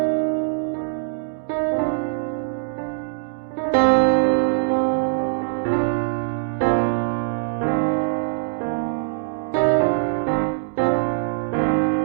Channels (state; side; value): silent; left; digital silence